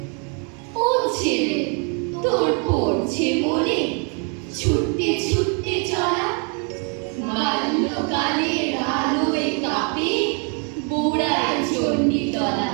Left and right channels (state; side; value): quieter; left; 38.3 dB